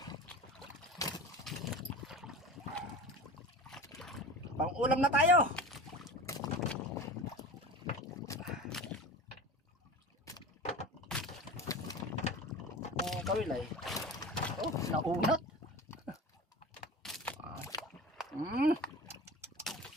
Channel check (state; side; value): normal; both; correlation 0.34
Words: Pang-ulam na tayo. Kawilay. Oh, naunat.